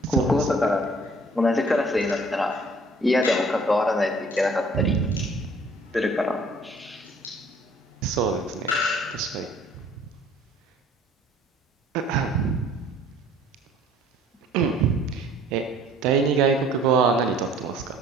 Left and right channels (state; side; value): normal; both; correlation 0.55